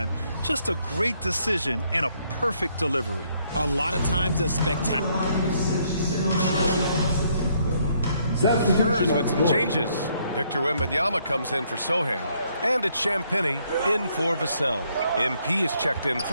Just a great decision and a perfect delivery. A lot of times a spectacular. Spurs with some changes. Victor Wembanyama comes in for Sohan. And it's Champagny in for Vassell. MP is checked in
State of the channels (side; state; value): both; inverted; correlation -0.70